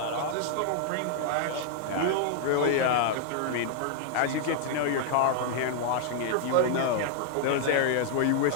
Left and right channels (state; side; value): different; both; correlation -0.01